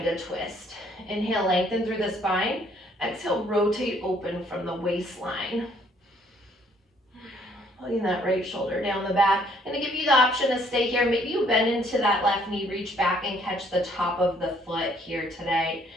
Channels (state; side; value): normal; both; correlation 0.64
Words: a twist. Inhale, lengthen through the spine. Exhale, rotate open from the waistline. Pulling that right shoulder down the back. I'm gonna give you the option to stay here. Maybe you bend into that left knee, reach back and catch the top of the foot here today